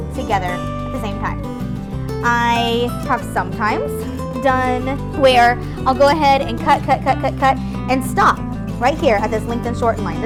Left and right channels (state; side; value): identical; both; correlation 1.00